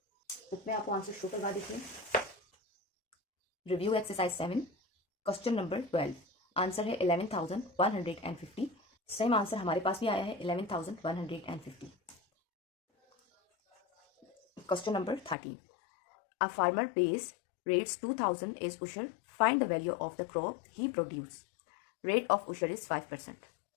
बुक में आपको आंसर शो करवा देते हैं। Review exercise 7 question number 12, answer है 11,150। सेम आंसर हमारे पास भी आया है 11,150। Question number 13, a farmer pays rates 2,000 is उशर, find the value of the crop he produce, rate of उशर इज 5%।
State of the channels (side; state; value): right; drops out; at 15.4 s